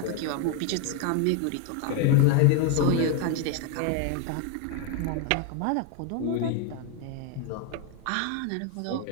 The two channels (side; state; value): both; different; correlation 0.01